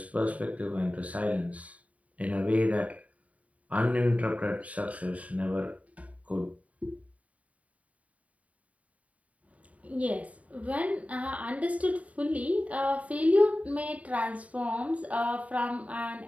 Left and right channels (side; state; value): left; late; 0.068 ms